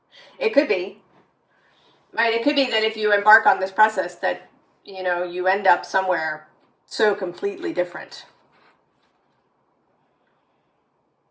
It could be. Right? It could be that if you embark on this process that, you know, you end up somewhere so completely different.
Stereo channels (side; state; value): both; identical; correlation 1.00